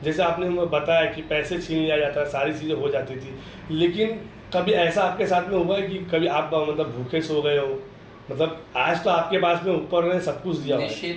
जैसे आपने बताया कि पैसे छीन लिया जाता, सारी चीज़ें हो जाती थी, लेकिन कभी ऐसा आपके साथ में हुआ है कि कभी आप मतलब भूखे सो गए हो? मतलब आज तो आपके पास में ऊपर ने सब कुछ दिया।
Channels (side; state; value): both; identical; correlation 1.00